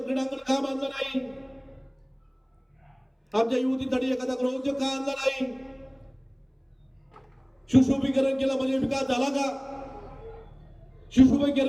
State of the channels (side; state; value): both; identical; correlation 1.00